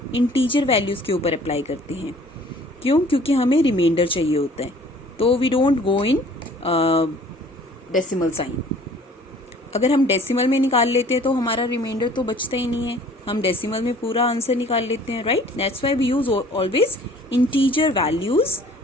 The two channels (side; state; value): both; normal; correlation 0.53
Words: इंटीजर वैल्यूज के ऊपर अप्लाई करते हैं। क्यों? क्योंकि हमें रिमाइंडर चाहिए होता है, तो we don't go in decimal sign. अगर हम डेसिमल में निकाल लेते हैं तो हमारा रिमाइंडर तो बचता ही नहीं है, हम डेसिमल में पूरा आंसर निकाल लेते हैं, right? That's why we use always integer values